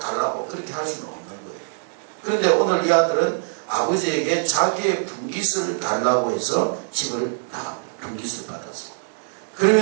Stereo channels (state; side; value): silent; left; digital silence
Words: 그렇게 할 수는 없는 거예요. 그런데 오늘 이 아들은 아버지에게 자기의 분깃을 달라고 해서 집을 나갑니다. 분깃을 받았어요.